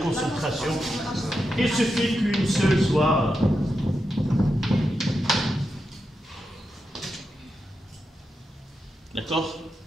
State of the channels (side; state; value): both; normal; correlation 0.87